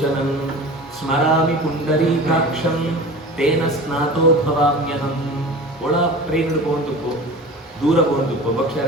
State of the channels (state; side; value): normal; both; correlation 0.36